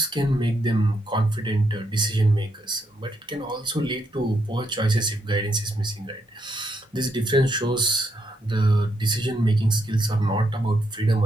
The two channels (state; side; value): normal; both; correlation 0.78